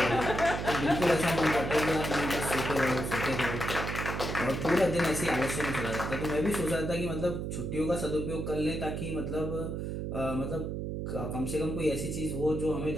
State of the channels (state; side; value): noise; right; hum, 3 dB below the sound